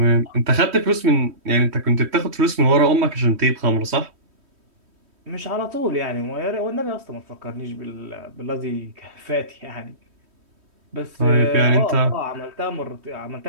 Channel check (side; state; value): left; late; 3.1 ms